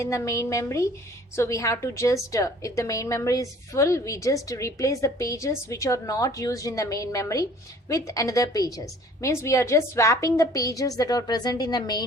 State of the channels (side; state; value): both; normal; correlation 0.52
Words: the main memory, so we have to just if the main memory is full, we just replace the pages which are not used in the main memory with another pages. Means we are just swapping the pages that are present in the